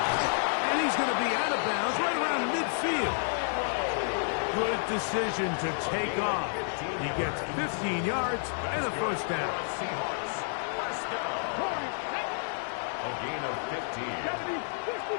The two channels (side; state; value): right; silent; digital silence